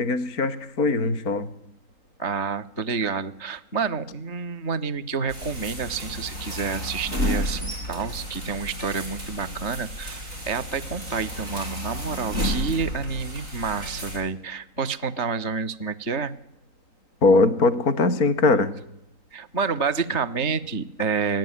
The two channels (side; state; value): right; late; 3.9 ms